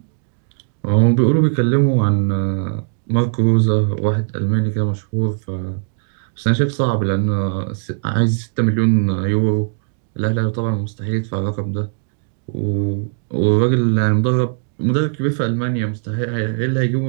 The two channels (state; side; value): silent; left; digital silence